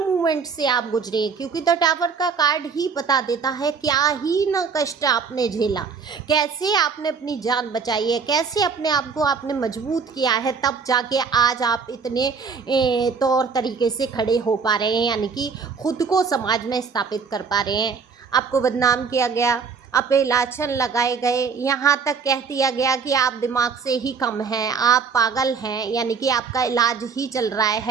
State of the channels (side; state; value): left; quieter; 5.6 dB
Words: से आप गुजरे, क्योंकि तो टावर का कार्ड ही बता देता है क्या ही ना कष्ट आपने झेला, कैसे आपने अपनी जान बचाई है, कैसे अपने आप को आपने मजबूत किया है, तब जाके आज आप इतने तौर तरीके से खड़े हो पा रहे हैं, यानी कि खुद को समाज में स्थापित कर पा रहे हैं। आपको बदनाम किया गया, अपलाछन लगाए गए, यहाँ तक कह दिया गया कि आप दिमाग से ही कम हैं, आप पागल हैं, यानी कि आपका इलाज ही चल रहा